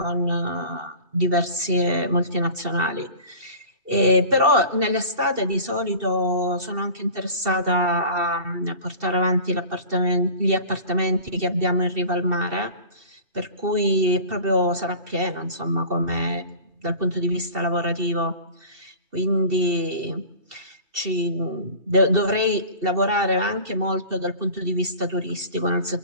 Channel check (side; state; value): left; late; 2.7 ms